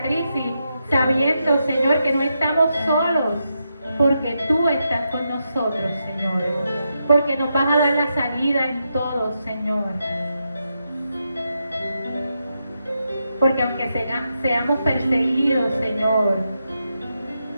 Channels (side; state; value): both; inverted; correlation -0.85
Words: crisis, sabiendo, Señor, que no estamos solos, porque tú estás con nosotros, Señor. Porque nos vas a dar la salida en todo, Señor. Porque aunque seamos perseguidos, Señor,